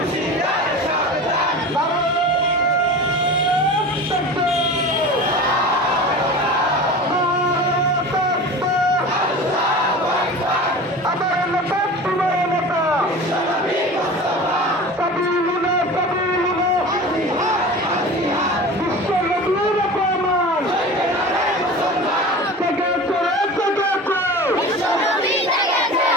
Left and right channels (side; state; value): both; normal; correlation 0.34